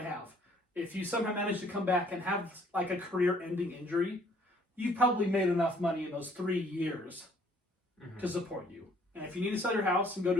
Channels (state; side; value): normal; both; correlation 0.61